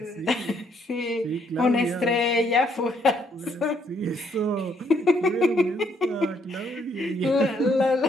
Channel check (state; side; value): normal; both; correlation 0.70